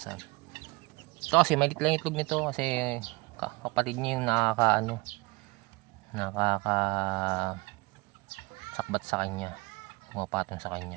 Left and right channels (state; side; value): quieter; left; 24.7 dB